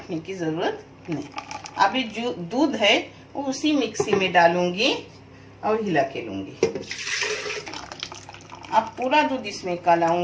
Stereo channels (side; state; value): both; identical; correlation 1.00